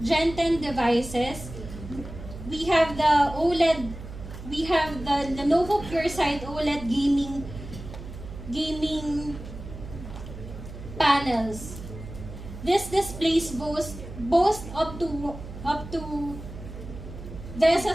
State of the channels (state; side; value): noise; right; hum, 12 dB below the sound